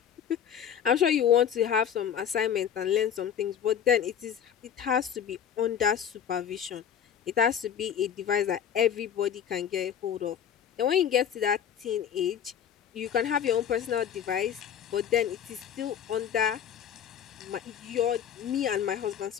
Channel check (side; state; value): right; quieter; 8.8 dB